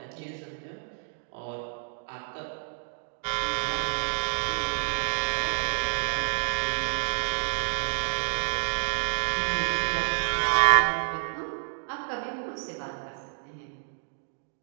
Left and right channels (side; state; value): left; silent; digital silence